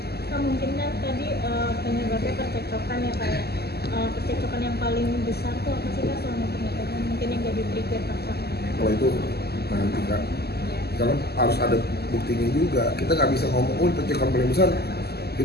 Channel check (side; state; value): right; late; 0.46 ms